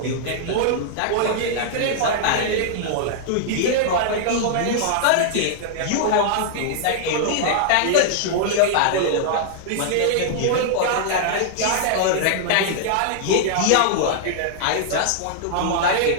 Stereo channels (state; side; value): different; both; correlation -0.01